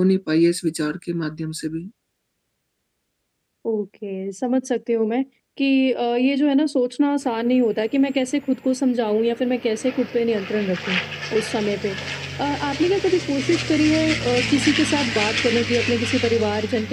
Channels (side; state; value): both; identical; correlation 1.00